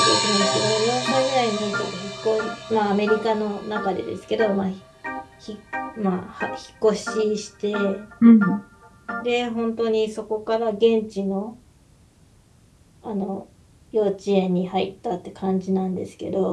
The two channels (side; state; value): both; identical; correlation 1.00